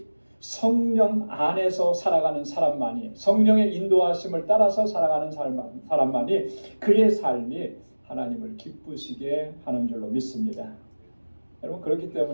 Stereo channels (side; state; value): both; inverted; correlation -1.00